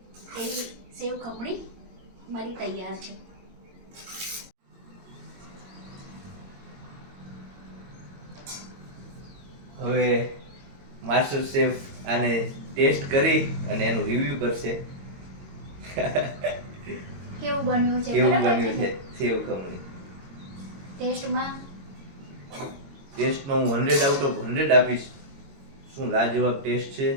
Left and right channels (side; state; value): left; late; 22 ms